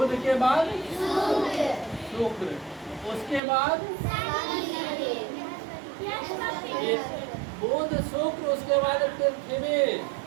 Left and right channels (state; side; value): drops out; left; at 3.4 s